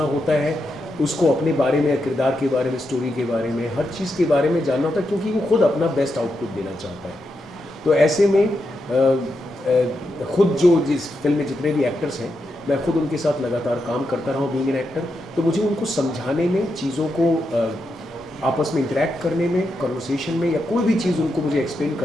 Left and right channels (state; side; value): normal; both; correlation 0.85